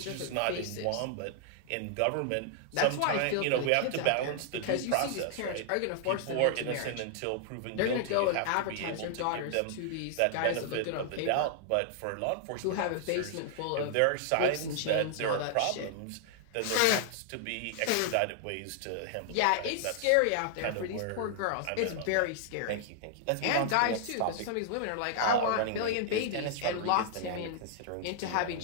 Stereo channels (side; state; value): both; different; correlation 0.00